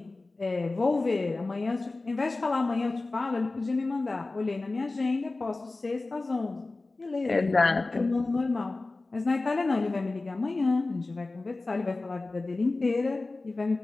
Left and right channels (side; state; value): right; quieter; 3.3 dB